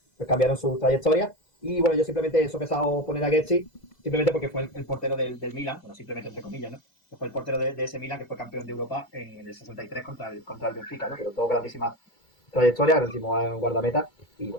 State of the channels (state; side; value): late; right; 2.3 ms